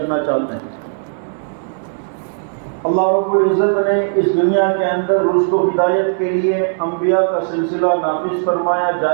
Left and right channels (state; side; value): silent; left; 68 dB below the other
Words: چاہتے ہیں۔ اللہ رب العزت نے اس دنیا کے اندر رشد و ہدایت کے لیے انبیاء کا سلسلہ نافذ فرمایا،